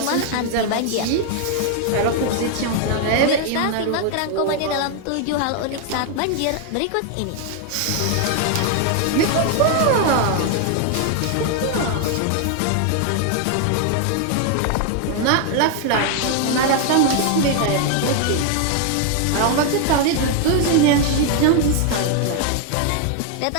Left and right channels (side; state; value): both; different; correlation 0.00